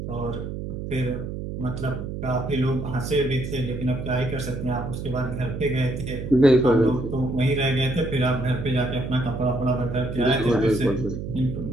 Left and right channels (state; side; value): noise; right; hum, 6 dB below the sound